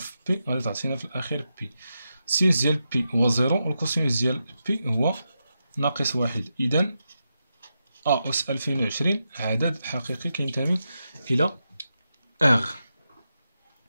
بي غادي تعطينا في الاخير بي. السينوس ديال بي هو 0 والكوسينوس ديال بي هو ناقص 1. اذا ا اس 2020 عدد حقيقي كينتمي الى ار.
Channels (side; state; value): both; inverted; correlation -0.87